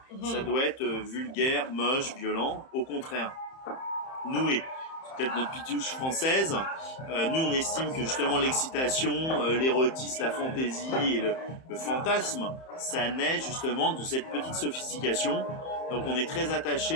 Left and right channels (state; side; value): late; right; 31 ms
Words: ça doit être vulgaire, moche, violent. Au contraire, nous c'est peut-être notre pitouche française. Nous, on estime que justement l'excitation, l'érotisme, la fantaisie et le fantasme, ça naît justement de cette petite sophistication. Donc, on est très